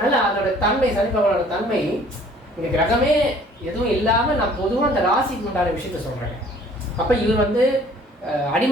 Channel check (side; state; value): both; normal; correlation 0.54